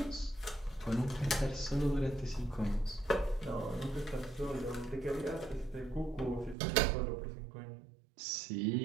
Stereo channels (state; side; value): drops out; left; at 6.6 s